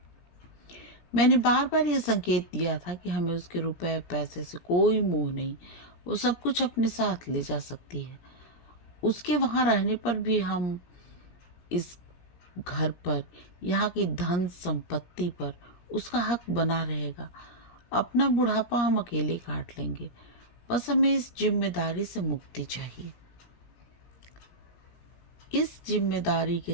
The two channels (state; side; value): late; right; 17 ms